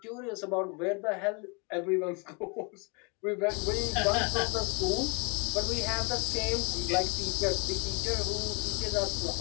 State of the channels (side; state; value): right; quieter; 32.5 dB